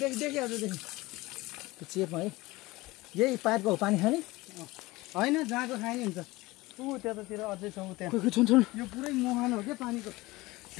देखिहाल्छ त्यो चेपमा है यही पाइपको हो पानी खाने होइन जहाँको खाने हुन्छ ऊ त्यतातिर अझै छ ऊ त्यहाँ खोइ छोड यो पुरै मुहान हो क्या पानीको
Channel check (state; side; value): quieter; right; 20.5 dB